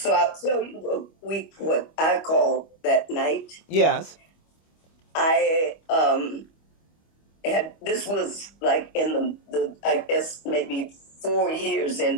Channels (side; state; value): right; late; 25 ms